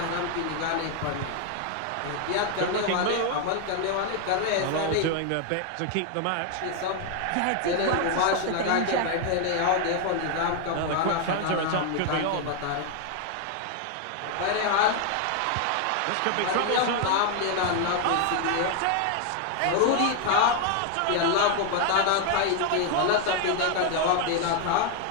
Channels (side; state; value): both; different; correlation 0.00